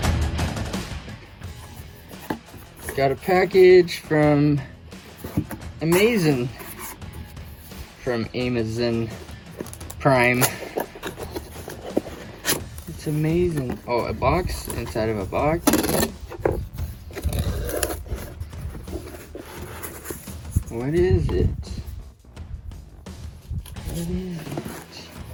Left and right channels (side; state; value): both; identical; correlation 1.00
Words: Got a package from Amazon Prime. It's amazing. Oh, a box inside of a box. What is it? What is it?